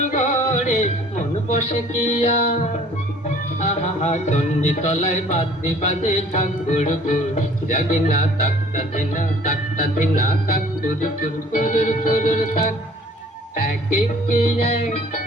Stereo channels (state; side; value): normal; both; correlation 0.53